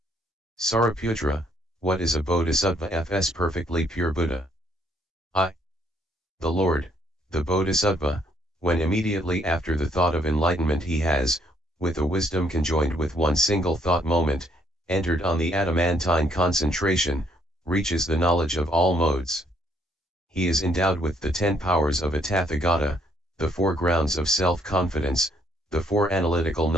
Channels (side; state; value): both; normal; correlation 0.68